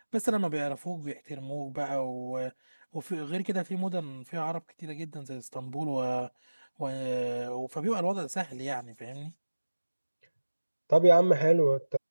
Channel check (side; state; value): both; inverted; correlation -1.00